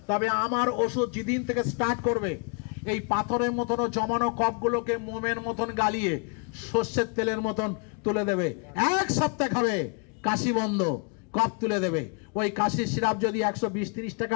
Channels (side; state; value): right; quieter; 37.3 dB